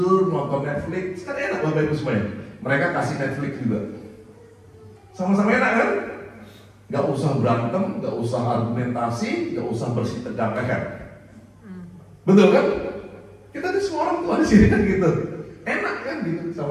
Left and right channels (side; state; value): both; identical; correlation 1.00